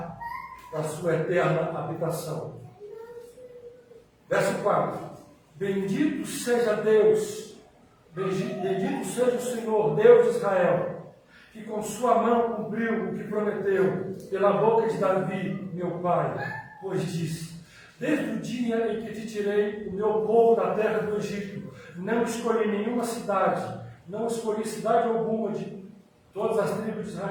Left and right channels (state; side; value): identical; both; correlation 1.00